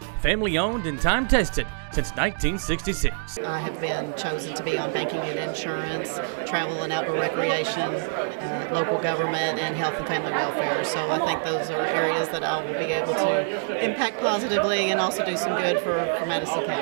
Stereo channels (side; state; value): left; silent; digital silence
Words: Family owned and time tested since 1966. I have been chosen to be on banking and insurance, travel and outdoor recreation, local government, and health and family welfare. So I think those are areas that I will be able to impact positively and also do some good for Madison